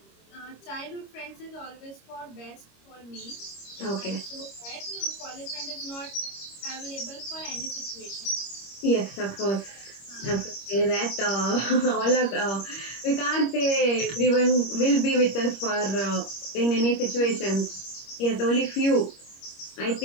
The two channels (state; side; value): late; right; 25 ms